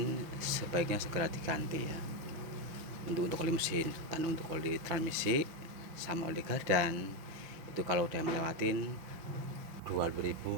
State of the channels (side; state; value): left; late; 6.0 ms